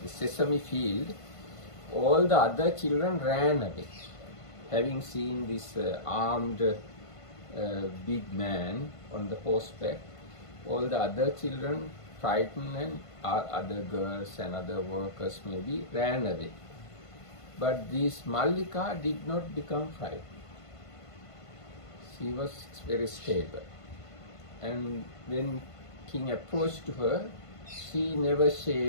the sesame field, all the other children ran away. Having seen this armed big man on the horseback, all the other children, frightened, and other girls and other workers maybe ran away. But this Mallika did not become frightened. She was very stable. And when king approached her, she never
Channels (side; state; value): right; late; 1.5 ms